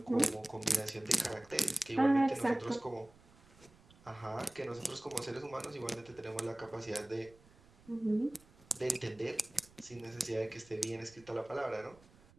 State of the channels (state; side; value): noise; right; rumble, 26 dB below the sound